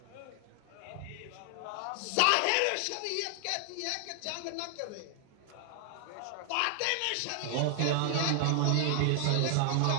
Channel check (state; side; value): different; both; correlation 0.00